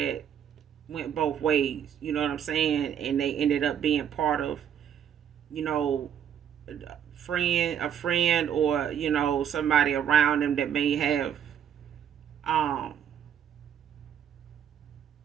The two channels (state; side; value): quieter; left; 9.0 dB